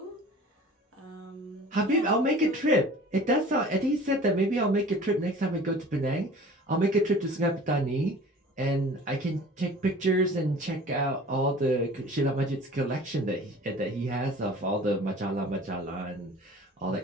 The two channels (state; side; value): normal; both; correlation 0.44